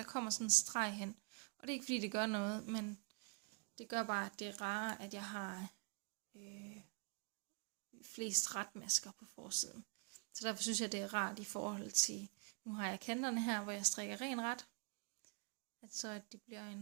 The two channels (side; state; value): left; quieter; 38.0 dB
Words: kommer sådan en streg hen. Og det er ikke fordi, det gør noget, men det gør bare, at det er rarere, at jeg har flest retmasker på forsiden. Så derfor synes jeg, det er rart i forhold til, nu har jeg kanterne her, hvor jeg strikker ren ret. At det bliver